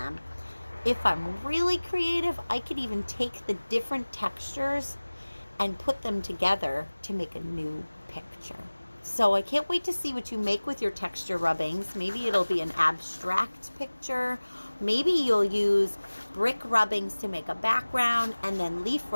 If I'm really creative, I could even take the different textures and put them together to make a new picture. So I can't wait to see what you make with your texture rubbings. Maybe it'll be an abstract picture. Maybe you'll use brick rubbings to make a background and then leaf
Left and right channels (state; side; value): inverted; both; correlation -1.00